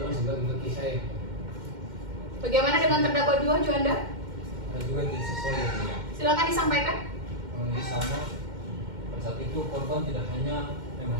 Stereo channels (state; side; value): late; left; 2.1 ms